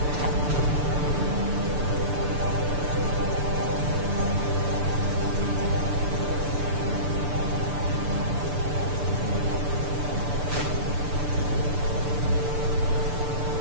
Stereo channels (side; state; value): left; late; 6.8 ms